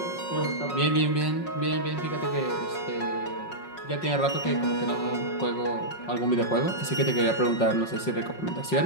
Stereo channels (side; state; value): right; late; 5.5 ms